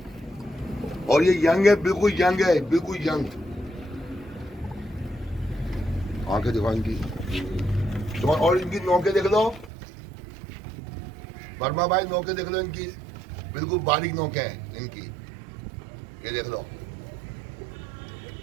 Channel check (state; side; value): drops out; left; at 9.7 s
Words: और ये यंग है, बिल्कुल यंग है, बिल्कुल यंग। आंखें दिखाओ इनकी तो, और इनकी नोके देख लो वर्मा भाई, नोके देख लो इनकी, बिल्कुल बारीक नोके हैं इनकी। ये देख लो,